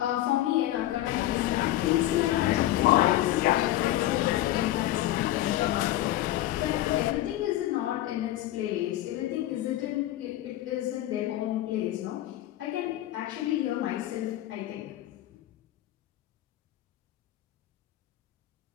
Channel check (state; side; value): quieter; right; 14.6 dB